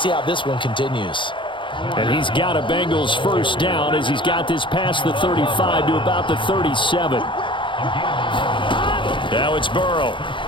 see how this one continues. And he's got a Bengals first down as he's got this past the 35 to about the 37. Now it's Burrow.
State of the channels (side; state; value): right; late; 0.24 ms